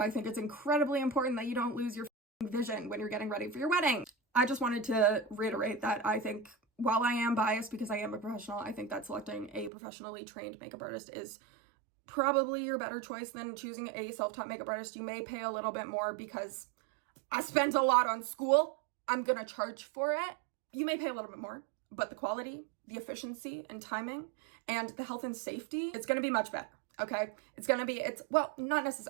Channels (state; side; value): drops out; left; at 9.7 s